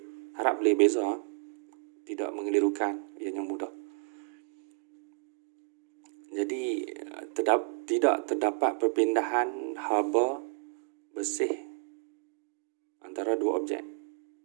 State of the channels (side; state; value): left; silent; 57 dB below the other